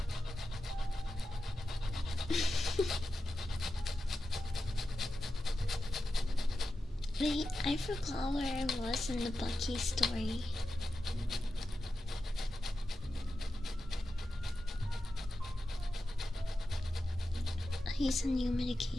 forgot where I was in the Bucky story. He's on new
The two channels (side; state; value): both; normal; correlation 0.91